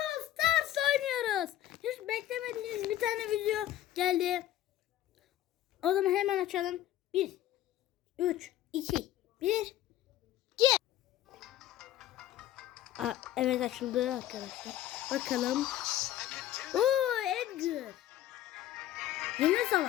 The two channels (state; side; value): quieter; right; 13.0 dB